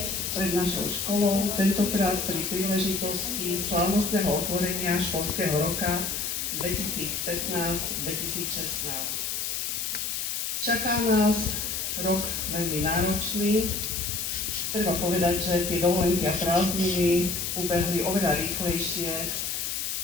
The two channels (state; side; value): noise; left; hiss, 2 dB below the sound